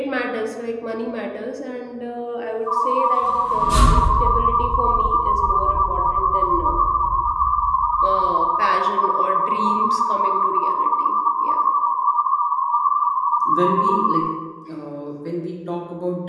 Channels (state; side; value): identical; both; correlation 1.00